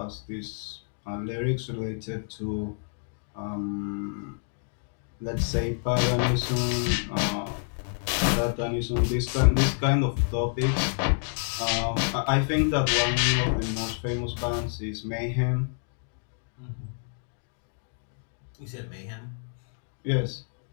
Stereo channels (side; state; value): right; silent; digital silence